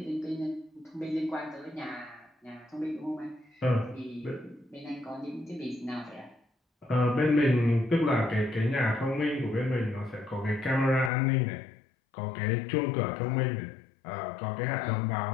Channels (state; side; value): drops out; right; at 11.1 s